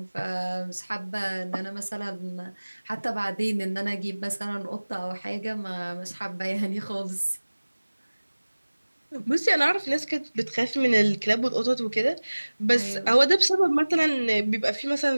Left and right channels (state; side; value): inverted; both; correlation -1.00